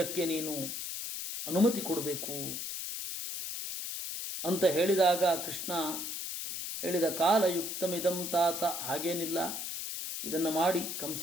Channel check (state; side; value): noise; left; hiss, 5 dB below the sound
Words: ನೀನು ಅನುಮತಿ ಕೊಡಬೇಕು ಅಂತ ಹೇಳಿದಾಗ ಕೃಷ್ಣ ಹೇಳಿದ, ಕಾಲಯುಕ್ತಮಿದಂ ತಾತ. ಹಾಗೇನಿಲ್ಲ, ಇದನ್ನು ಮಾಡಿ. ಕಂಸ